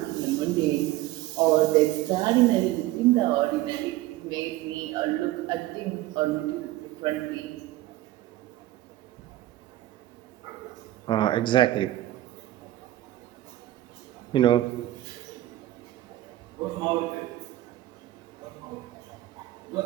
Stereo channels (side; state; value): left; quieter; 15.6 dB